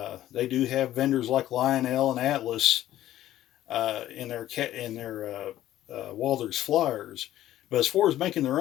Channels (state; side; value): quieter; right; 13.4 dB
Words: They do have vendors like Lionel and Atlas in their Walthers flyers, but as far as making their